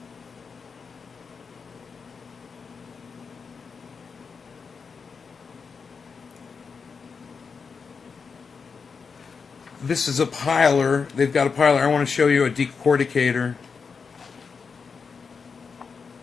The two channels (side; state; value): right; quieter; 5.4 dB